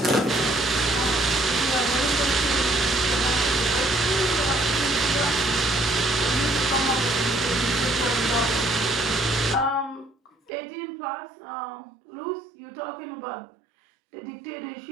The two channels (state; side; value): drops out; left; at 10.5 s